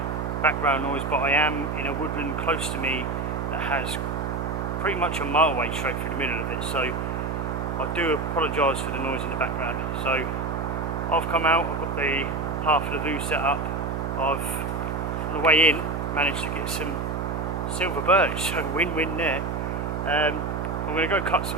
background noise, but I am in a woodland close to me that has pretty much a motorway straight through the middle of it. So I do apologise for the noise in the background. So I've come out, I've got the half lavoo set up. I've, on the way in, managed to get some silver birch, so win-win there. I'm going to go cut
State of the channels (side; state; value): right; noise; hum, 2 dB below the sound